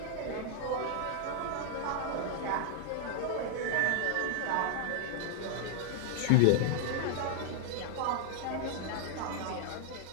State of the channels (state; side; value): different; both; correlation 0.00